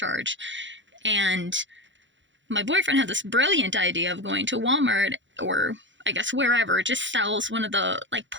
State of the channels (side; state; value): left; late; 0.54 ms